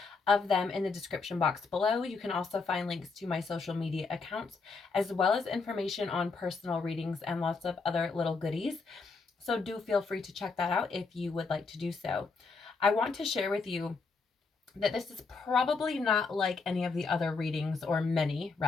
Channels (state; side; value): quieter; right; 4.4 dB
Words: of them in the description box below. You can also find links to my social media accounts, as well as information on personal readings and lots of other little goodies. So do feel free to check that out if you would like to do so. I want to share with you that this is probably not like any of the other readings, or many